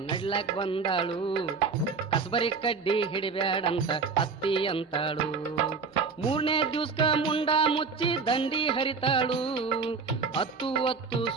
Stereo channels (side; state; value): left; quieter; 4.9 dB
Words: ನಡ್ಲಾಕ್ ಬಂದಾಳು, ಕಸಬರಿ ಕಡ್ಡಿ ಹಿಡಿಬ್ಯಾಡಂತ ಅತ್ತಿ ಅಂತಾಳು. ಮೂರನೇ ದಿವ್ಸಕ ಮುಂಡ ಮುಚ್ಚಿ ದಂಡಿ ಹರಿತಾಳು, ಹತ್ತು